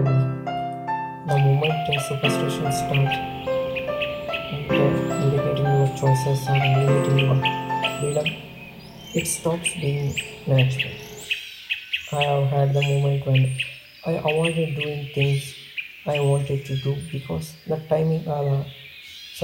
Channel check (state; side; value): identical; both; correlation 1.00